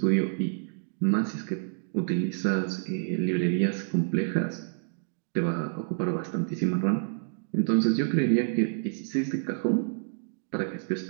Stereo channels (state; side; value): silent; left; digital silence